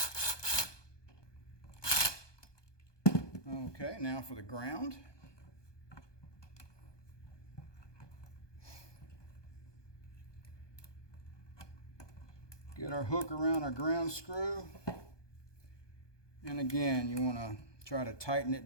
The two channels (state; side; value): late; right; 1.2 ms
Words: Okay, now for the ground. Get our hook around our ground screw. And again, you want to try to tighten